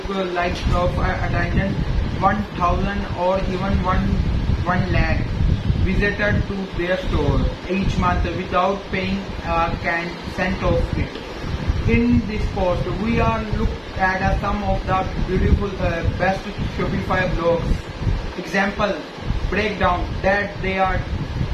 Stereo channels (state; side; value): identical; both; correlation 1.00